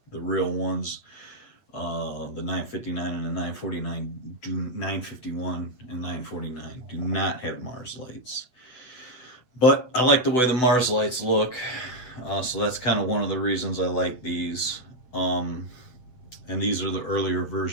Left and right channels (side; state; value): right; late; 8.2 ms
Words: real ones, the 959 and the 949 951 and 949 do not have Mars lights. But I like the way the Mars lights look, so that's kind of one of the reasons I like these. And these are the earlier